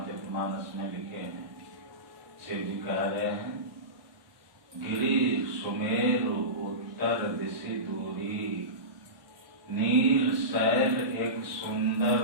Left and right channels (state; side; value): late; left; 1.2 ms